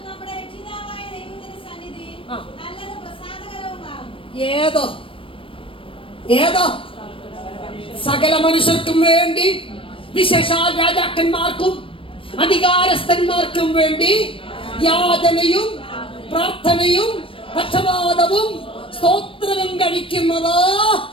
ഏതോ ഏതോ സകല മനുഷ്യർക്കും വേണ്ടി, വിശേഷാൽ രാജാക്കന്മാർക്കും അധികാരസ്ഥന്മാർക്കും വേണ്ടി യാതനയും പ്രാർത്ഥനയും പക്ഷപാതവും സ്തോത്രവും കഴിക്കുന്നത്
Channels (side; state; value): right; late; 0.26 ms